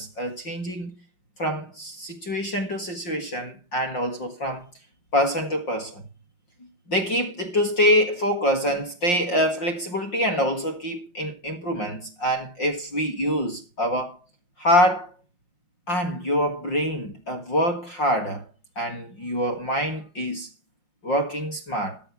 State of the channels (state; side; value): late; right; 5.6 ms